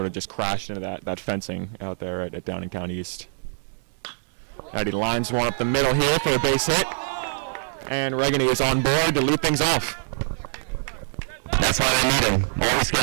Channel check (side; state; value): left; silent; digital silence